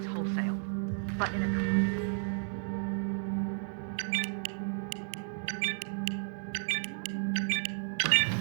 wholesale. But in a...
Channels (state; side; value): silent; left; digital silence